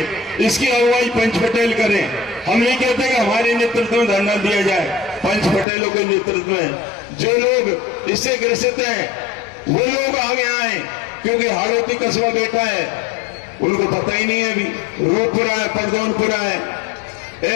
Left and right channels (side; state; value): right; drops out; at 5.7 s